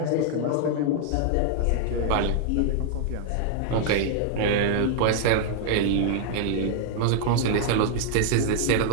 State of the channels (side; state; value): both; different; correlation -0.01